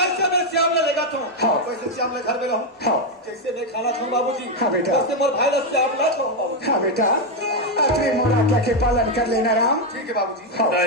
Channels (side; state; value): both; normal; correlation 0.04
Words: मैं श्याम ले लेगा तो हाँ। वैसे श्याम ले घर में रहूं हाँ। जैसे मैं खाना खाऊं बाबूजी हाँ बेटा। वैसे मोर भाई ला श्याम ला खाऊं बाबूजी हाँ बेटा अपने मोरा के पालन कर लेना राम ठीक है बाबूजी खाओ